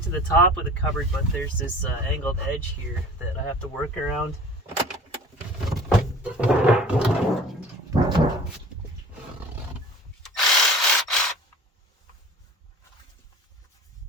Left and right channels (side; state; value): both; normal; correlation 0.44